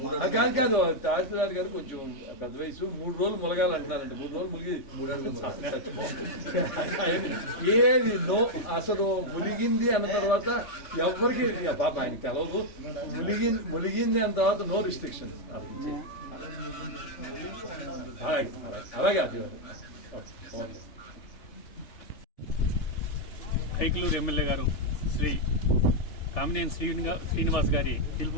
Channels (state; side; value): late; right; 3.4 ms